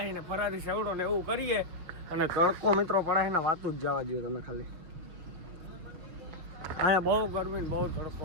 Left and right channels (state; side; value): late; left; 6.3 ms